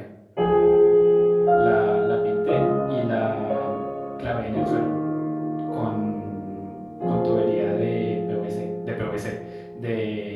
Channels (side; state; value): both; identical; correlation 1.00